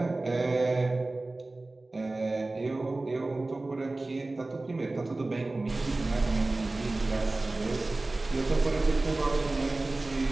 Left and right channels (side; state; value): left; quieter; 3.0 dB